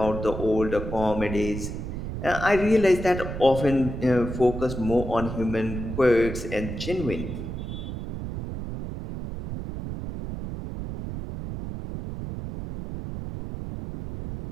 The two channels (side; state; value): right; noise; rumble, 6 dB below the sound